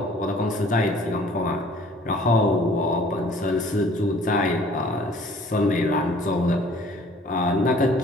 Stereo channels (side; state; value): both; normal; correlation 0.54